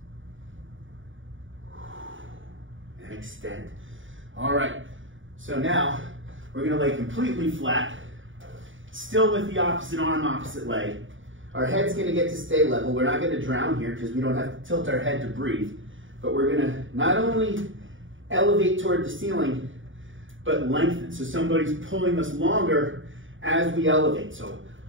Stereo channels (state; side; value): late; left; 0.57 ms